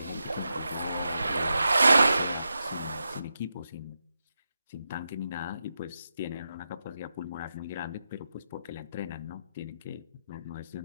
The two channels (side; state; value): both; inverted; correlation -0.87